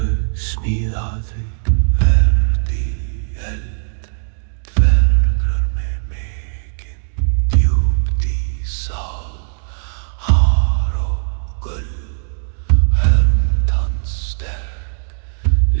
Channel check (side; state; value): left; silent; 67 dB below the other